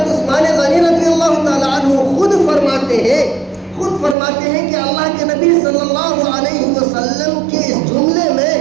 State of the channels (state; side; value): drops out; left; at 4.2 s